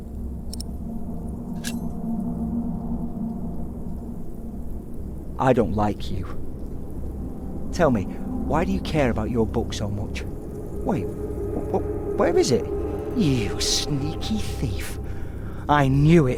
I don't like you. Tell me, why do you care about your book so much? Wait, where is it? You sneaky thief. I knew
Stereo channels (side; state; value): both; identical; correlation 1.00